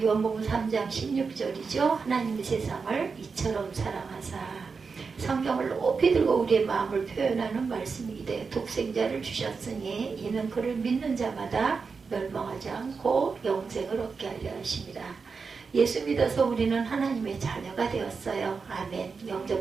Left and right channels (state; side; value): quieter; left; 5.0 dB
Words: 요한복음 3장 16절이죠. 하나님의 세상을 이처럼 사랑하사. 성경을 높이 들고 우리의 마음을 표현하는 말씀이기 때문에 독생자를 주셨으니 이는 그를 믿는 자마다 멸망하지 않고 영생을 얻게 하려 하십니다. 예수 믿어서 우리는 하나님의 자녀가 되었어요. 아멘.